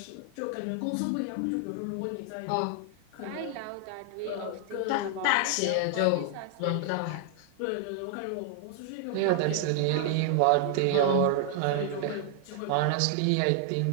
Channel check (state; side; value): different; both; correlation 0.00